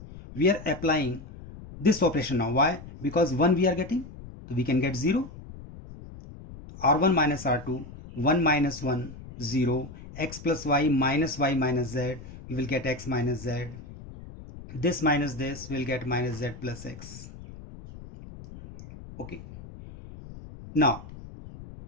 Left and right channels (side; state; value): left; noise; rumble, 15 dB below the sound